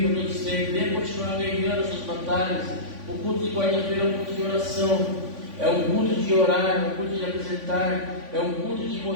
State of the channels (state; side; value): late; left; 3.5 ms